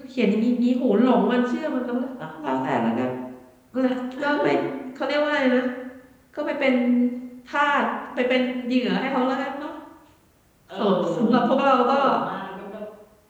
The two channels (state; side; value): identical; both; correlation 1.00